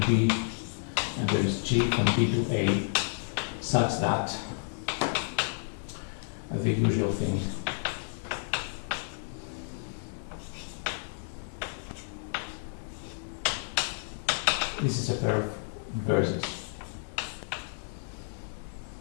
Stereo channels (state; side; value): silent; right; digital silence